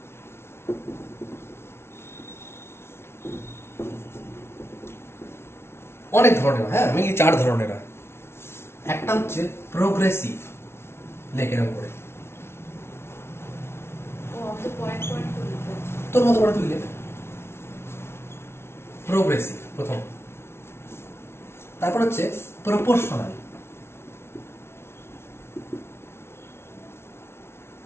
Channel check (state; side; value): late; right; 0.12 ms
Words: অনেক ধরনের হয়, হ্যাঁ মেইনলি 4 ধরনের হয়। একটা হচ্ছে প্রোগ্রেসিভ, লেখের উপরে ও তো পয়েন্ট পয়েন্ট করে লিখতে হচ্ছে। তোর মতো করে তুই লেখ। প্রোগ্রেসিভ প্রথম, তারপর হচ্ছে প্রপোর্শনাল,